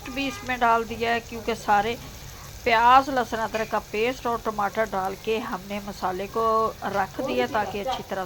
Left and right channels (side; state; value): both; identical; correlation 1.00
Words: भी इसमें डाल दिया है, क्योंकि सारे प्याज, लहसुन अदरक का पेस्ट और टमाटर डाल के हमने मसाले को रख दिया, ताकि अच्छी तरह